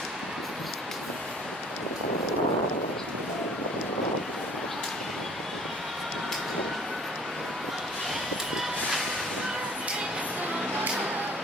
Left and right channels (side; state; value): both; normal; correlation 0.53